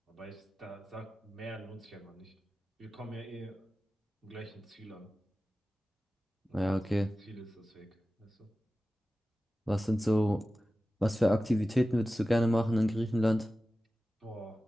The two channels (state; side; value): normal; both; correlation 0.95